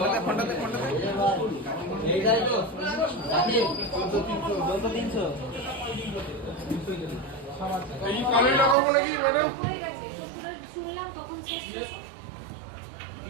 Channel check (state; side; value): drops out; left; at 8.8 s